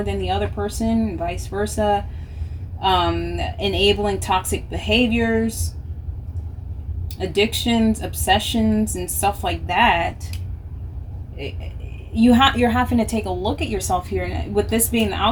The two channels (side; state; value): both; identical; correlation 1.00